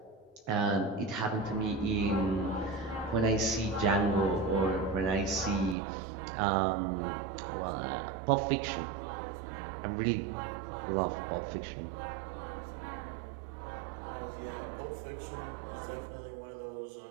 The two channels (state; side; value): drops out; left; at 5.8 s